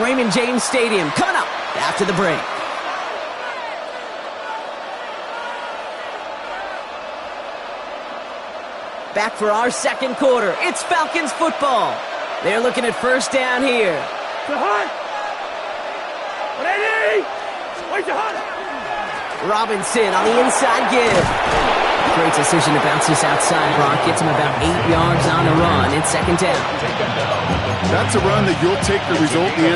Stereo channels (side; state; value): both; identical; correlation 1.00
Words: Raymond James Stadium coming up after the break. Back for our second quarter. It's Falcons football. They're looking at first down here. Robinson on the inside give. Great decision to bounce this outside, Brock. Gets him about 8 yards on the run. It's second down. That's a run that you'll take the result in the